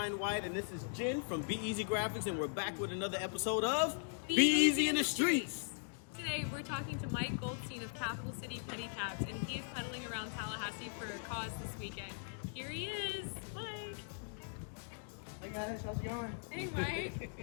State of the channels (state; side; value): silent; right; digital silence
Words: White, and this is Jen from Be Easy Graphics, and we're back with another episode of Be Easy in the Streets. Today, we're talking to Mike Goldstein of Capital City Pedicabs, and he is pedaling around Tallahassee for a cause this weekend. Here he is, Mike. Hey guys, how's it going? Hey, Mike.